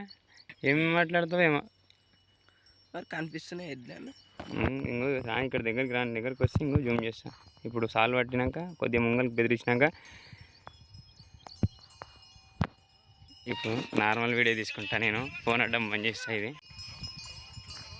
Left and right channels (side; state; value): both; identical; correlation 1.00